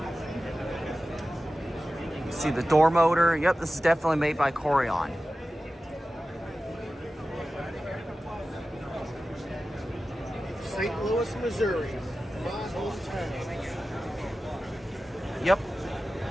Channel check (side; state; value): both; normal; correlation 0.95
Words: See the door motor. Yep, this is definitely made by Courion. St. Louis, Missouri, my hometown. Yep.